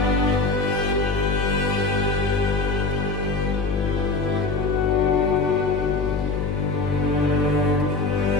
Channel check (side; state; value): left; noise; hum, 2 dB below the sound